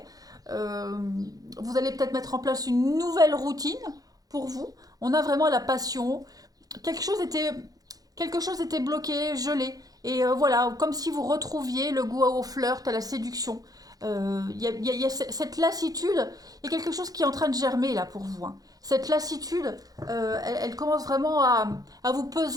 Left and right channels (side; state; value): left; late; 0.18 ms